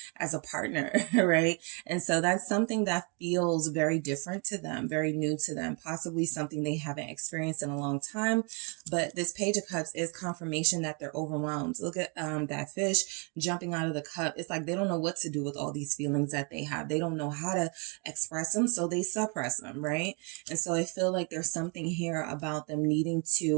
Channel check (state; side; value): quieter; left; 35.1 dB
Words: as a partner, right? And so that's something that feels very different to them, very new to them, possibly something they haven't experienced in a long time. But this Page of Cups is confirmation that they're overwhelmed. Look at that fish jumping out of the cup. It's like they don't know what to do with all these feelings that they have. They don't know how to express them, so they suppress them, right? And so I feel like there's something here about them needing